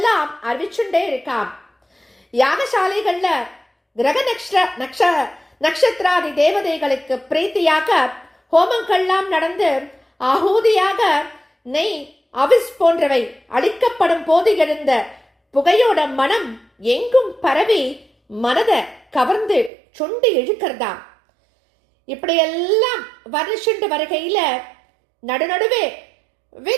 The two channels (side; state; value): left; drops out; at 19.7 s